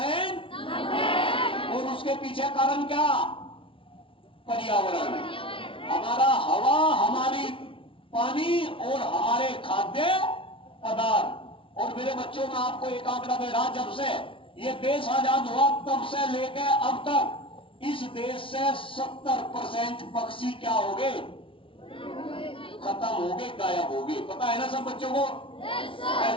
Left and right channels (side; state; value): right; late; 0.25 ms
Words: और उसके पीछे कारण क्या? पर्यावरण। हमारा हवा, हमारी पानी और हमारे खाद्य पदार्थ। और मेरे बच्चों में आपको एक आंकड़ा दे रहा, जब से ये देश आजाद हुआ तब से लेकर अब तक इस देश से 70% पक्षी क्या हो गए? खत्म हो गए, गायब हो गए। पता है ना सब बच्चों को?